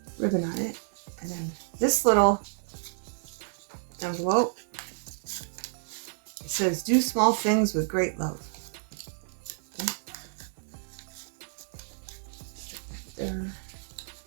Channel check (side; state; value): left; silent; 58 dB below the other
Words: ribbon on it. And then this little envelope, it says, do small things with great love. Okay. Stick that there.